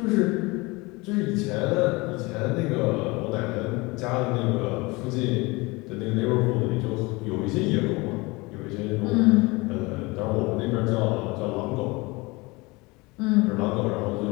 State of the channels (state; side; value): quieter; right; 24.2 dB